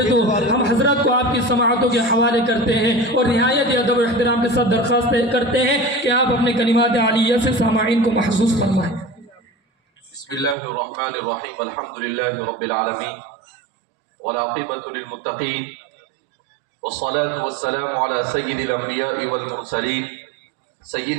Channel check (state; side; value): drops out; left; at 10.6 s